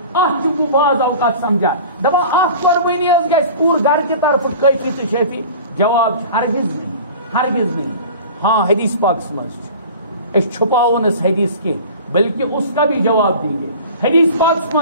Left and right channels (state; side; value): inverted; both; correlation -0.40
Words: ات بعض اوقات سمجھا دپان اخ قربانی گھس پور گھر کی طرف کافی تو شفی جواب ہرگز نہیں ہاں حدیث پاکس مز چھپاون اس حدیث کی بلکہ اس کا بھی جواب دیں گے حدیث پاکس